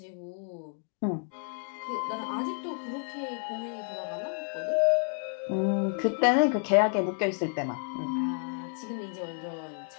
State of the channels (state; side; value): silent; right; 55 dB below the other